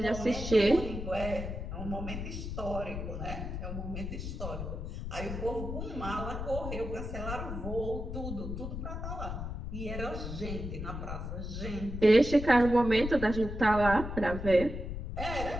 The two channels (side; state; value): left; noise; rumble, 6 dB below the sound